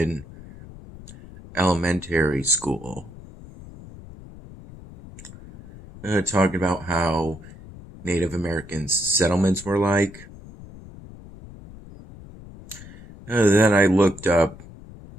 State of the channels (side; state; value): left; noise; rumble, 18 dB below the sound